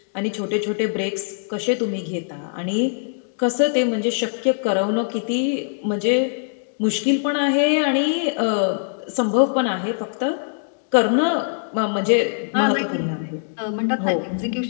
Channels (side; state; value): right; silent; digital silence